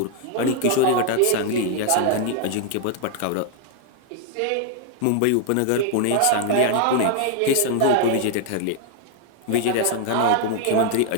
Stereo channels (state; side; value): different; both; correlation 0.00